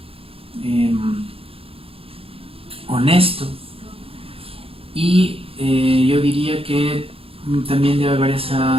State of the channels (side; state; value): left; late; 0.27 ms